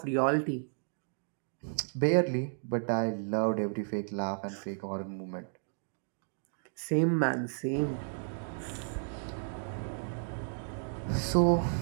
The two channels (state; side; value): silent; left; digital silence